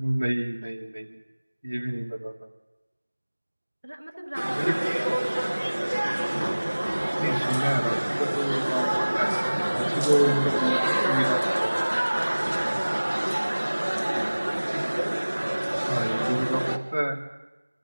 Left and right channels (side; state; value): both; inverted; correlation -1.00